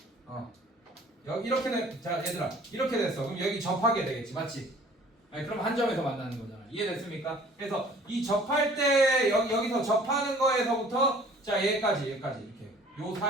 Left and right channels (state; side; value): normal; both; correlation 0.52